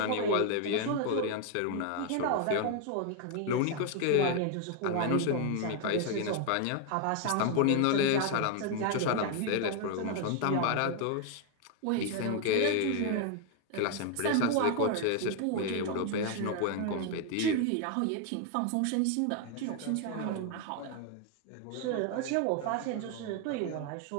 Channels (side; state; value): both; different; correlation 0.00